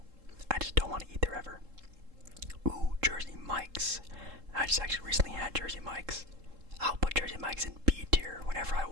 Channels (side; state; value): left; late; 3.7 ms